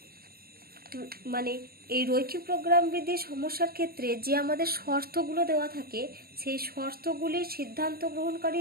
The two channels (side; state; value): left; late; 0.44 ms